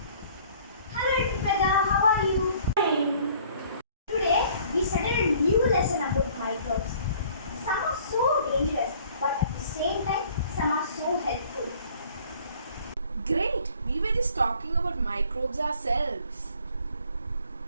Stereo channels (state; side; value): inverted; both; correlation -0.56